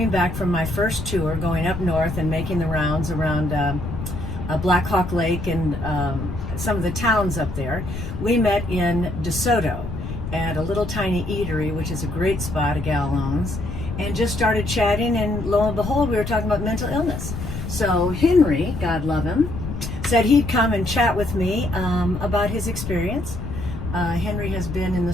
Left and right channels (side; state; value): left; noise; rumble, 6 dB below the sound